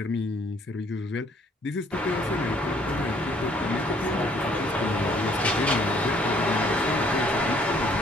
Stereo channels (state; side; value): normal; both; correlation 0.62